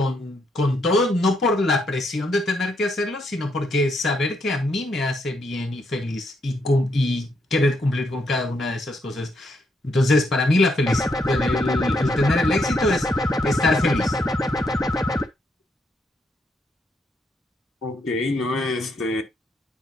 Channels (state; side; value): normal; both; correlation 0.76